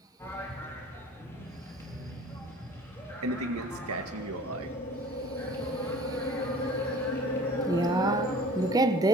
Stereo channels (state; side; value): normal; both; correlation 0.46